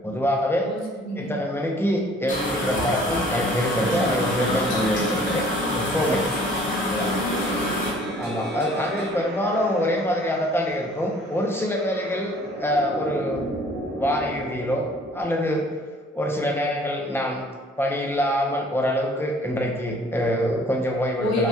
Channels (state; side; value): normal; both; correlation 0.55